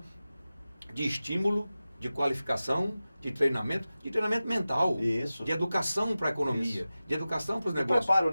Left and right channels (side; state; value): both; inverted; correlation -0.95